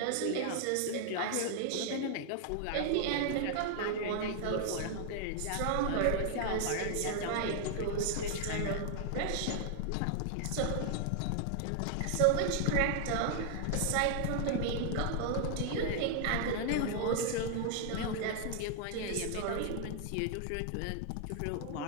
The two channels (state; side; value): different; both; correlation 0.00